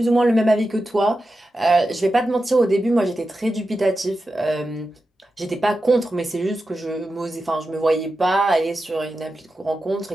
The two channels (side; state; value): both; normal; correlation 0.91